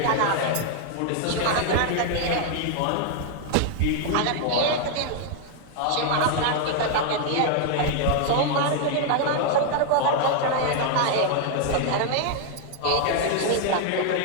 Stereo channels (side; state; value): both; different; correlation 0.00